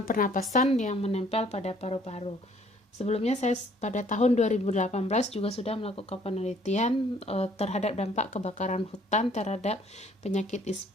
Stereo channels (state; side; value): normal; both; correlation 0.60